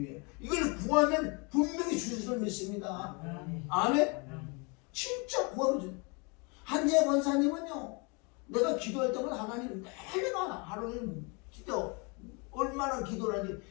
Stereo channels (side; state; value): right; quieter; 31.5 dB